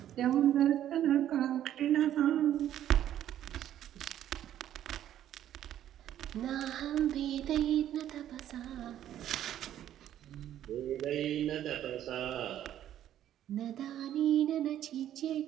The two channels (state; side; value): quieter; left; 11.5 dB